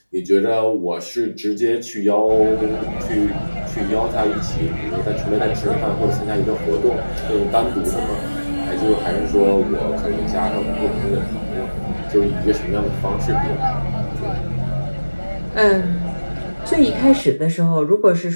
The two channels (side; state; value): both; inverted; correlation -1.00